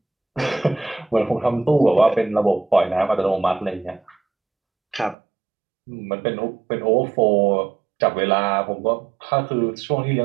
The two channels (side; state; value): left; drops out; at 5.2 s